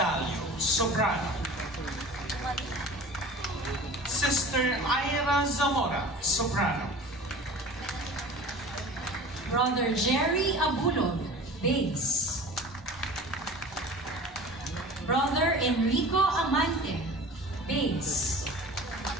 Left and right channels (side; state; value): both; normal; correlation 0.40